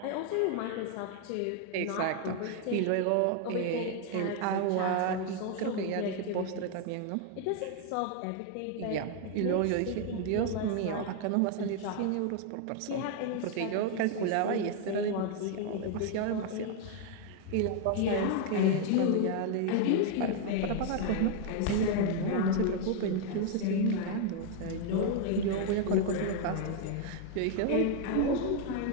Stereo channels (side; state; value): both; different; correlation 0.00